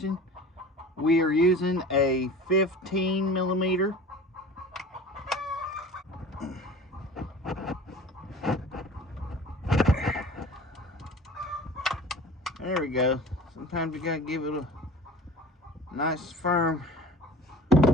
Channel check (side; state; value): both; normal; correlation 0.41